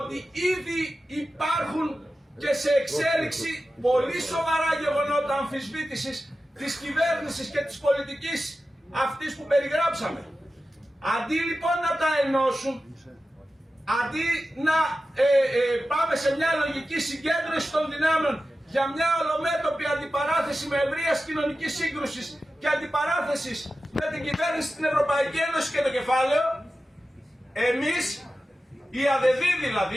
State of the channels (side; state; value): both; normal; correlation 0.93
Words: ήδη υπάρχουν και σε εξέλιξη πολύ σοβαρά γεγονότα αμφισβήτησης της κυβέρνησης και της πολιτικής αυτής που περιγράψαμε. Αντί λοιπόν να τα ενώσουν, αντί να πάμε σε μια λογική συγκέντρωση των δυνάμεων για μια ολομέτωπη αντιπαράθεση με ευρείας κοινωνικής σύγκρουσης και αντιπαράθεσης με την κυβέρνηση στην Ευρωπαϊκή Ένωση και το κεφάλαιο, εμείς, η ΑΔΔ